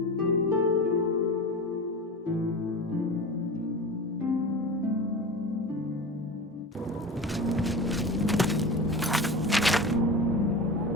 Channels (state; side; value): normal; both; correlation 0.29